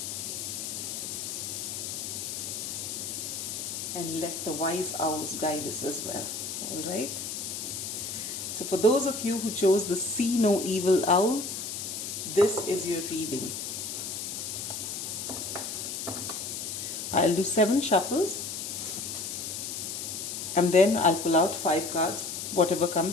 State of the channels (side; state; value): left; noise; hiss, 5 dB below the sound